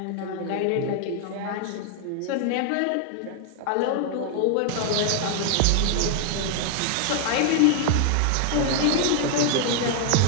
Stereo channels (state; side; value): different; both; correlation 0.00